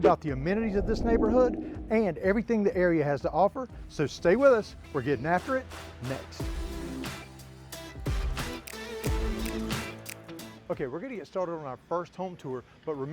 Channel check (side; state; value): both; identical; correlation 1.00